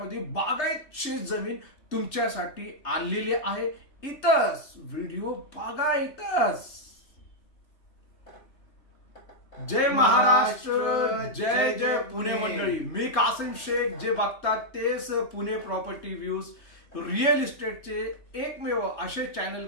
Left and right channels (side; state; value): right; late; 3.3 ms